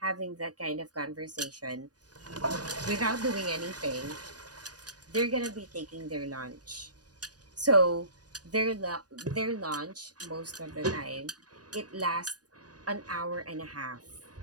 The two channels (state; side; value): late; left; 0.68 ms